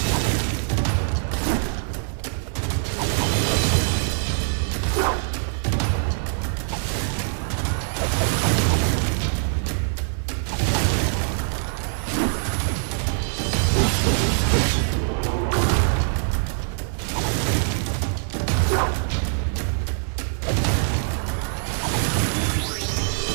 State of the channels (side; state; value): left; silent; digital silence